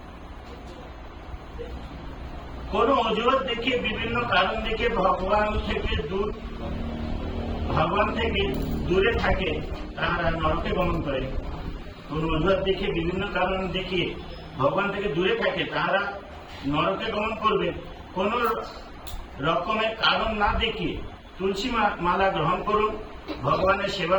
কোন অজুহাত দেখিয়ে, বিভিন্ন কারণ দেখে ভগবান থেকে দূরে থাকে তারা নরকে গমন করে। কোন অজুহাত দেখিয়ে, বিভিন্ন কারণ দেখিয়ে ভগবান থেকে দূরে থাকে তারা নরকে গমন করবে। কোন রকমের কারণ না দেখিয়ে তুলসী মালা গ্রহণ করুন, ভগবানের সেবা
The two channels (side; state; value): both; identical; correlation 1.00